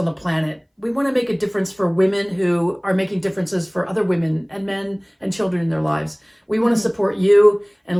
the planet. We want to make a difference for women who are making differences for other women and men and children in their lives. We want to support you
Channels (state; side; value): identical; both; correlation 1.00